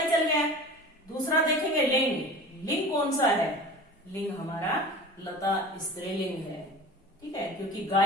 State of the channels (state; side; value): normal; both; correlation 0.37